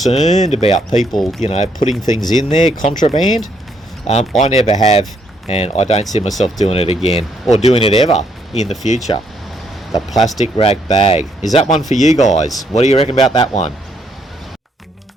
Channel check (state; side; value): normal; both; correlation 0.72